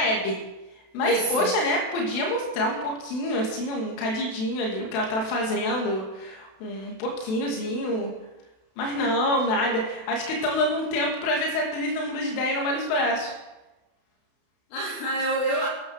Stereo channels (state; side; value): late; right; 32 ms